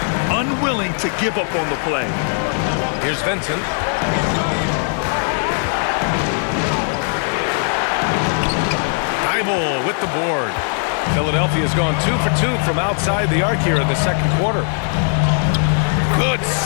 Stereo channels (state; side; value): silent; right; 56 dB below the other